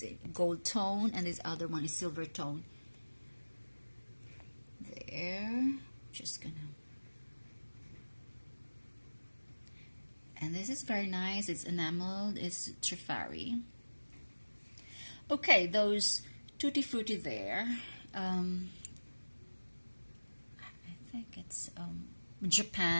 a gold tone, and this other one is silver tone. There, just gonna. And this is very nice. It's enameled. It's Trifari. Okay, those Tutti Frutti there. I think it's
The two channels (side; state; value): both; inverted; correlation -1.00